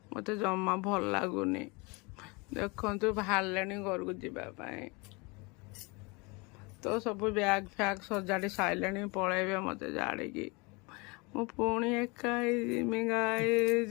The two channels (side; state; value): right; quieter; 27.8 dB